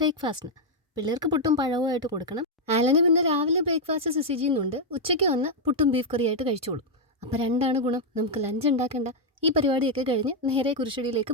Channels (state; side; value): normal; both; correlation -0.02